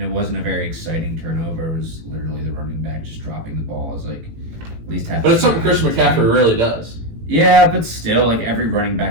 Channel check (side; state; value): left; late; 18 ms